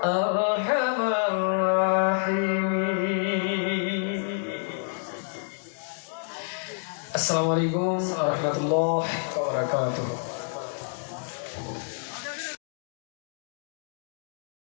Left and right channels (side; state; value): right; silent; digital silence